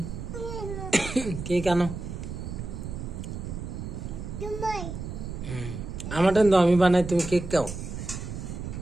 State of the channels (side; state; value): right; noise; rumble, 7 dB below the sound